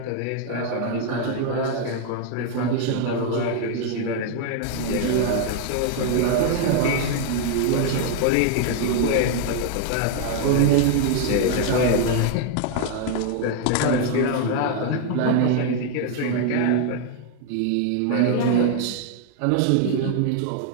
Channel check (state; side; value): different; both; correlation 0.00